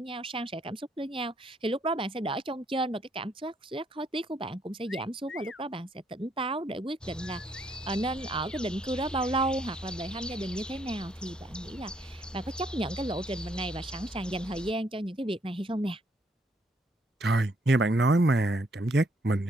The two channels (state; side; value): normal; both; correlation 0.71